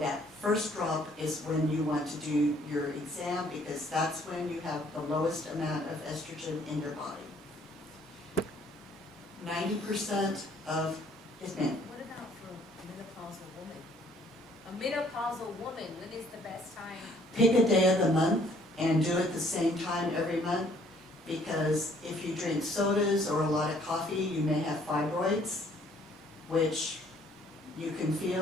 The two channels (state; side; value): normal; both; correlation 0.61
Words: first drop is when you want to do your exam, because that's when you have the lowest amount of estrogen in your body. 90% of is men. What about for a menopausal woman? A menopausal woman, when is the best time? Pick a day of the month and do it the same time every month, because if you drink sodas or a lot of coffee, you may have fibroids, which you can